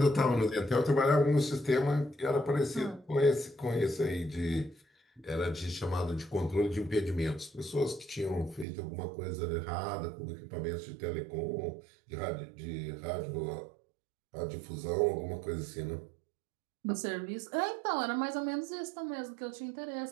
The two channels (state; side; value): drops out; left; at 8.7 s